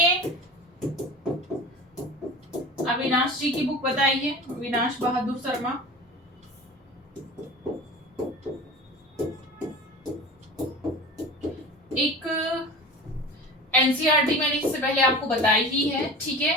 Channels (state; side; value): normal; both; correlation 0.35